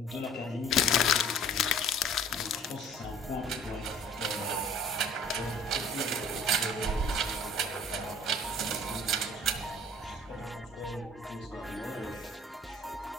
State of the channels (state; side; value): normal; both; correlation 0.51